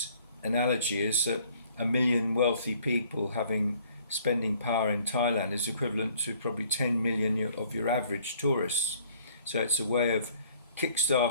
analogy is that 1 million wealthy people having spending power in Thailand is equivalent to probably 10 million of your average tourists. So it's a way of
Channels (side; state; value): both; inverted; correlation -0.60